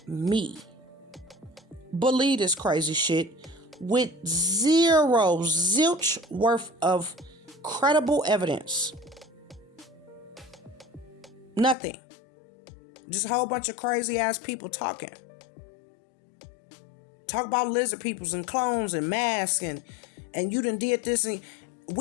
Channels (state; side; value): drops out; right; at 11.8 s